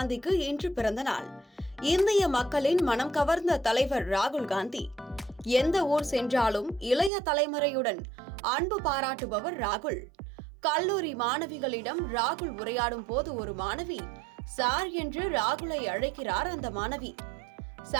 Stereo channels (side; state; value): left; drops out; at 7.1 s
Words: இன்று பிறந்த நாள். இந்திய மக்களின் மனம் கவர்ந்த தலைவர் ராகுல் காந்தி. எந்த ஊர் சென்றாலும் இளைய தலைமுறையுடன் அன்பு பாராட்டுபவர் ராகுல். கல்லூரி மாணவிகளிடம் ராகுல் உரையாடும் போது ஒரு மாணவி சார் என்று ராகுலை அழைக்கிறார். அந்த மாணவி,